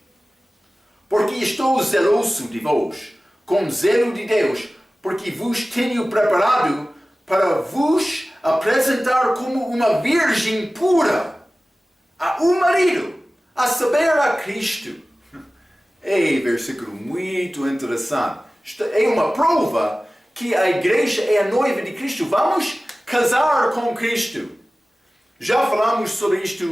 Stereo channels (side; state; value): both; normal; correlation 0.97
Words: porque estou zeloso de vós, com zelo de Deus, porque vos tenho preparado para vos apresentar como uma virgem pura a um marido, a saber, a Cristo. É versículo muito interessante. É uma prova que a igreja é a noiva de Cristo. Vamos casar com Cristo. Já falamos sobre